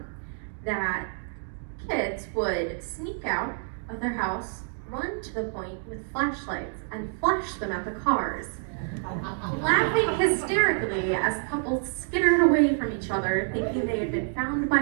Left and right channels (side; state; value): left; silent; 60 dB below the other